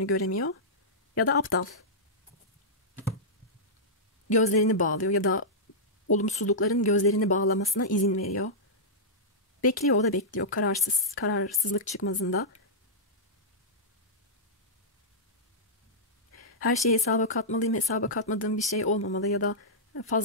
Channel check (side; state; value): both; normal; correlation -0.12